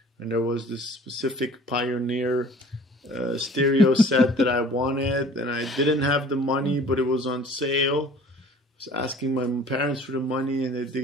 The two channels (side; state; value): both; normal; correlation 0.49